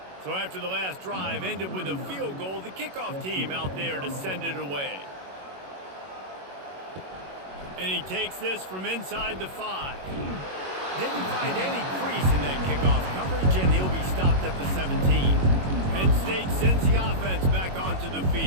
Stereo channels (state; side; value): late; left; 21 ms